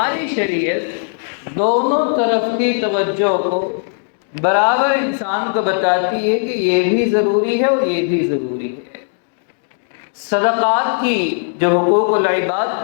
شریعت دونوں طرف کی توجہ کو برابر انسان کو بتاتی ہے کہ یہ بھی ضروری ہے اور یہ بھی ضروری ہے۔ صدقات کی جو حقوق العباد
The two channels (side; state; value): right; silent; 58 dB below the other